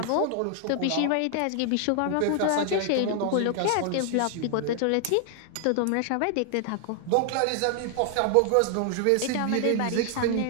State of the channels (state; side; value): different; both; correlation 0.00